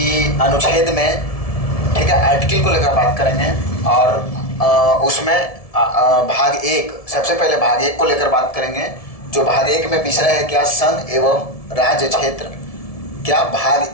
अनुच्छेद में, ठीक है, आर्टिकल को लेकर बात करेंगे। और उसमें भाग एक, सबसे पहले भाग एक को लेकर बात करेंगे। जो भाग एक में विषय है क्या, संघ एवं राज्य क्षेत्र। क्या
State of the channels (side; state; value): right; late; 1.7 ms